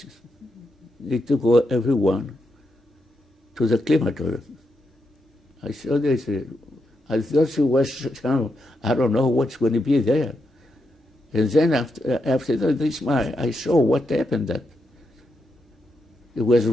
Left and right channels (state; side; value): normal; both; correlation 0.84